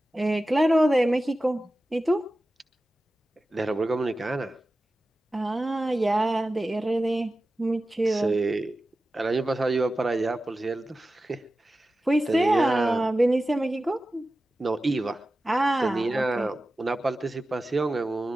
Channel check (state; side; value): normal; both; correlation 0.94